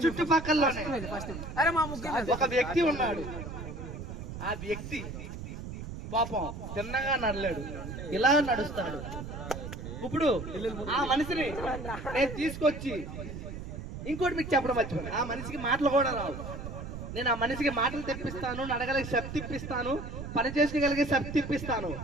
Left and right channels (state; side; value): noise; right; rumble, 8 dB below the sound